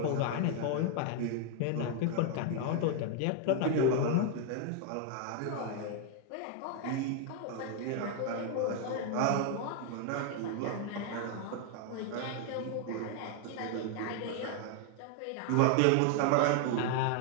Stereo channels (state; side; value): different; both; correlation 0.00